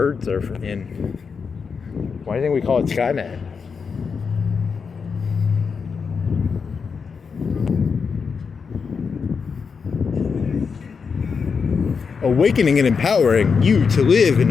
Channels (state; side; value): quieter; right; 5.6 dB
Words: are in. Why do you think we call it Skynet? Awakening and empowering you to live